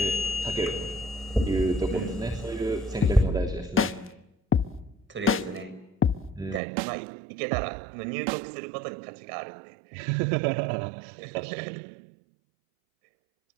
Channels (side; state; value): left; drops out; at 6.6 s